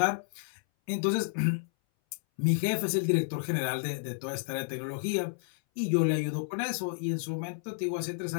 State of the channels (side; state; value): right; silent; 57 dB below the other